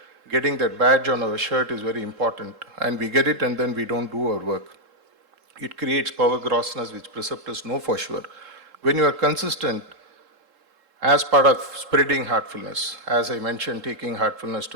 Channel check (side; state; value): left; late; 3.7 ms